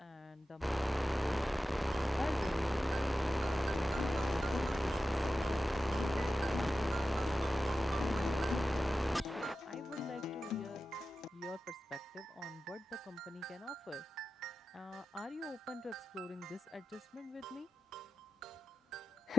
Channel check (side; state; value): both; normal; correlation 0.93